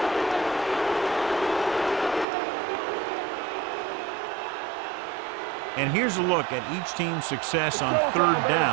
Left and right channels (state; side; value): drops out; left; at 2.2 s